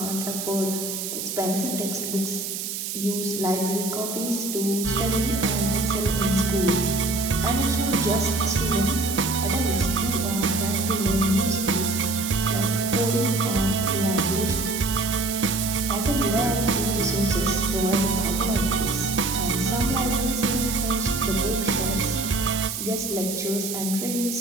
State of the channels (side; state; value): right; noise; hiss, 5 dB below the sound